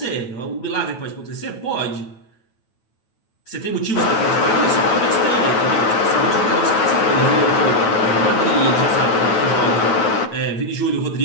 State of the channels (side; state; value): right; late; 9.1 ms